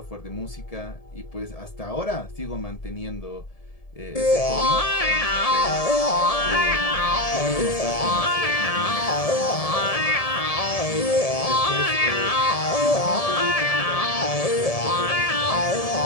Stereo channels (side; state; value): right; late; 1.7 ms